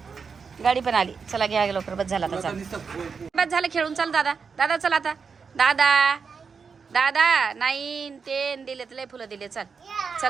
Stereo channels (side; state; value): left; quieter; 5.6 dB